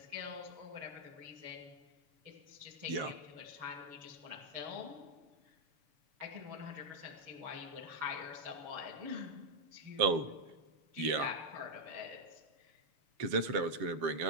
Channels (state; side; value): late; left; 6.9 ms